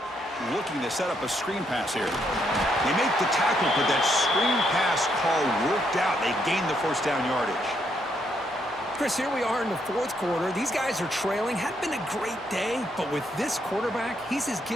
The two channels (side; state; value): both; normal; correlation 0.75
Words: Looking to set up a screen pass here. They make the tackle, but that screen pass call worked out. They gained the first down yardage. Chris, here we are in the 4th quarter. These guys are trailing. Hadn't been a great day, but with this quarterback, he's as